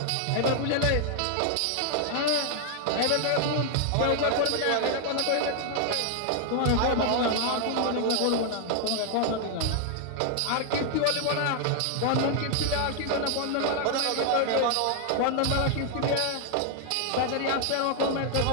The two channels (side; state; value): both; different; correlation 0.00